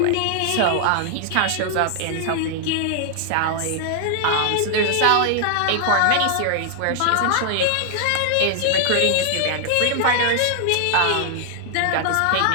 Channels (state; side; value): different; both; correlation 0.00